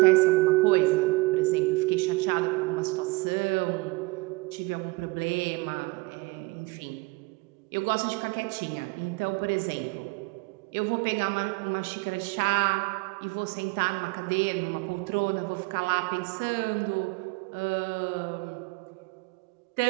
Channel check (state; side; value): quieter; left; 24.6 dB